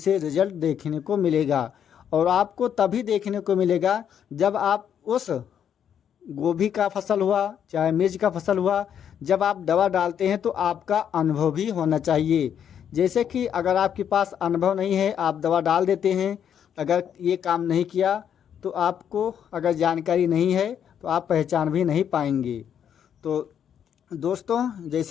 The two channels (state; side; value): quieter; right; 8.8 dB